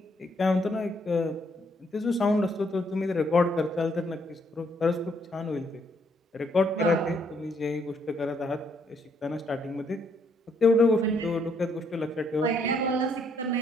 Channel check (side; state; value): both; normal; correlation 0.71